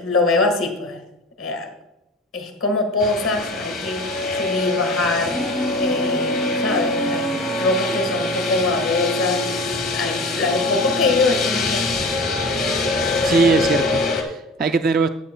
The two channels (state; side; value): normal; both; correlation 0.35